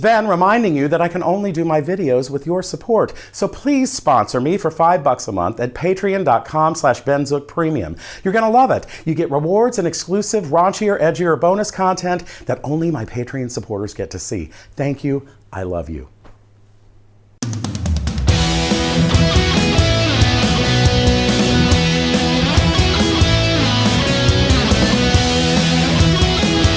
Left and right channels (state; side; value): identical; both; correlation 1.00